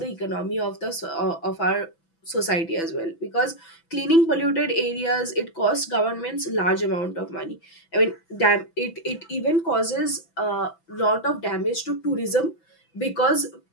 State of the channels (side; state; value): right; late; 6.0 ms